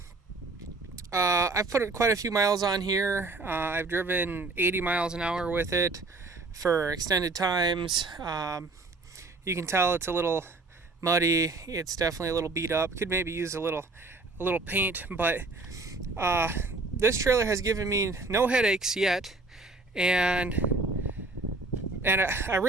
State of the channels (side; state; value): left; quieter; 3.4 dB